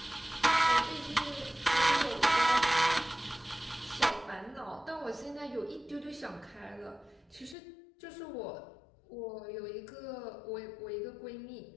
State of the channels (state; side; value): drops out; right; at 7.6 s